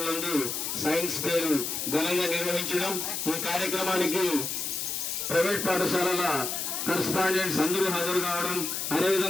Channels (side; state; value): left; noise; hiss, 3 dB below the sound